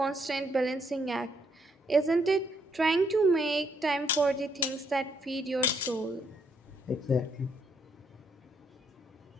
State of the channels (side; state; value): both; normal; correlation 0.73